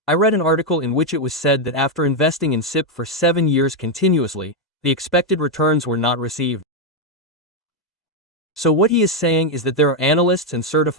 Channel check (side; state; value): both; normal; correlation 0.02